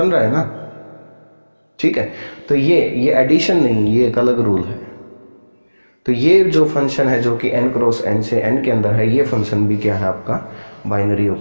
रहा है ना। ठीक है, तो ये एडिशन नहीं, ये एक अलग रूल है। तो ये जो फंक्शन है जो कि n क्रॉस n से n के अंदर है, ये फंक्शन भी क्या है आपका, बाइनरी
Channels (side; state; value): both; inverted; correlation -1.00